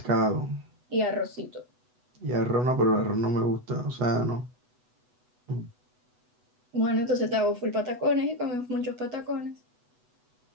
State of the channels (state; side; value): late; left; 8.1 ms